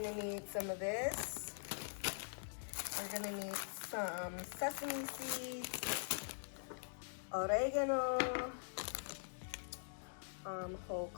need some of this. We're gonna need some sesame seeds, oregano, whole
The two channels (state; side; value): silent; right; digital silence